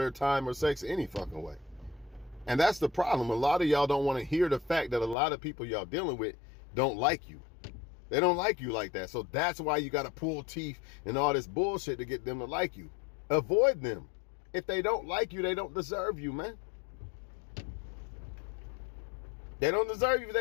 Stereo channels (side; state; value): right; drops out; at 5.2 s